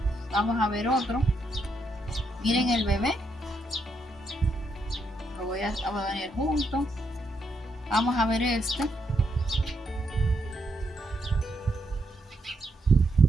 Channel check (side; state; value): both; normal; correlation 0.78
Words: Vamos a ver otro. Miren el bebé. Lo voy a poner junto. Vamos a ver este.